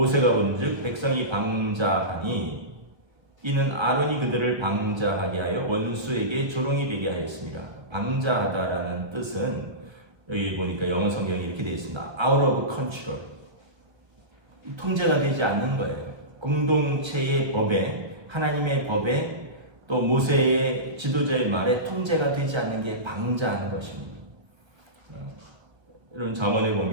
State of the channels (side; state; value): left; late; 1.2 ms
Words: 본즉 백성이 방자하니 이는 아론이 그들을 방자하게 하여 원수에게 조롱이 되게 하였습니다. 방자하다라는 뜻은 여기 보니까 영어 성경에 이렇게 되어 있습니다. Out of control. 통제가 되지 않는 거예요. 공동체의 법에, 하나님의 법에, 또 모세의 지도자의 말에 통제가 되지 않는 게 방자하는 것입니다. 여러분 잠언에